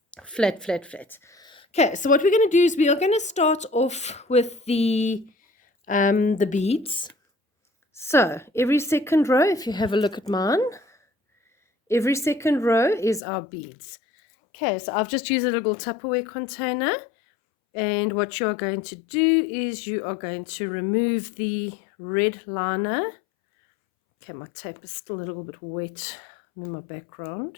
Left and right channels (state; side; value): drops out; right; at 13.2 s